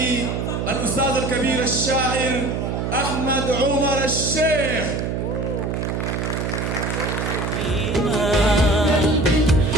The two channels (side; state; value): right; noise; hum, 2 dB below the sound